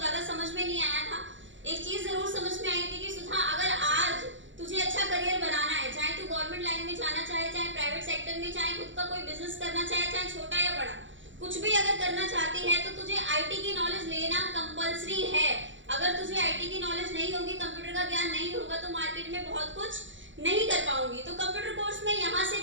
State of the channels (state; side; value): late; left; 0.55 ms